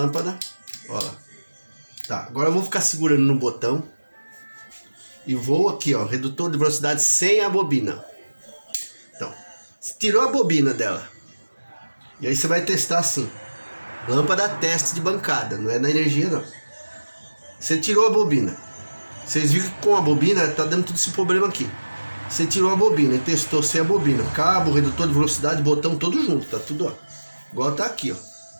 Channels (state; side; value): inverted; both; correlation -1.00